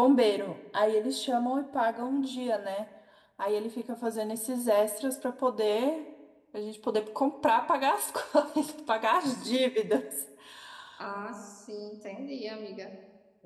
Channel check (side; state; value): both; identical; correlation 1.00